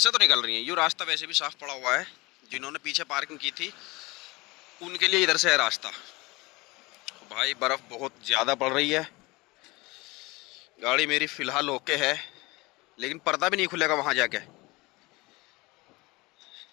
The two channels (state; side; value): quieter; right; 23.2 dB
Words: तो निकल रही है, ये रास्ता वैसे भी साफ पड़ा हुआ है। जिन्होंने पीछे पार्किंग की थी उनके लिए इधर से है रास्ता। भाई बर्फ बहुत ज़्यादा पड़ रही है। गाड़ी मेरी फ़िलहाल ओके है, लेकिन पर्दा भी नहीं खुलेगा वहाँ जाके।